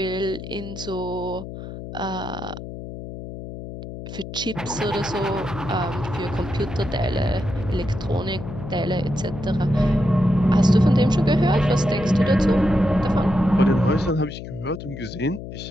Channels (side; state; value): left; noise; hum, 10 dB below the sound